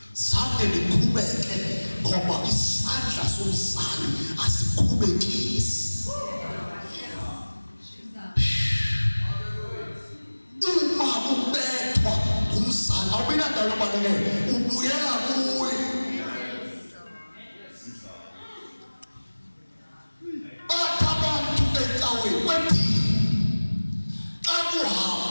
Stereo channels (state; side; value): inverted; both; correlation -1.00